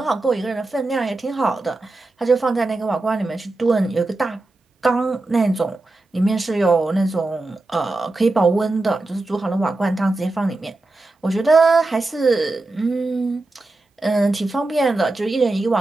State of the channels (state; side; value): quieter; left; 3.0 dB